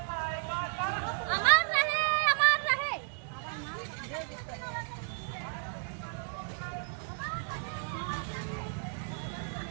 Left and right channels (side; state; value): left; silent; 56 dB below the other